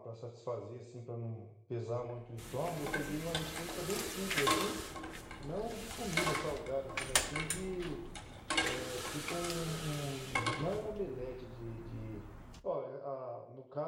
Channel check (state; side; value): identical; both; correlation 1.00